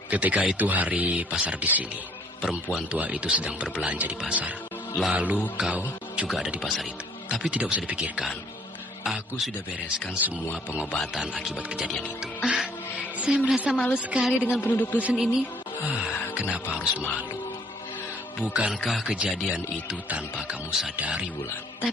Ketika itu hari pasar di sini, perempuan tua itu sedang berbelanja di pasar. Lalu kau juga ada di pasar itu. Tapi tidak usah dipikirkan. Aku sudah bereskan semua pengobatan akibat kejadian itu. Saya merasa malu sekali dengan penduduk dusun ini. Kenapa harus malu? Bukankah kejadian itu tanpa kamu sadari, Wulan?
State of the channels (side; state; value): both; normal; correlation 0.61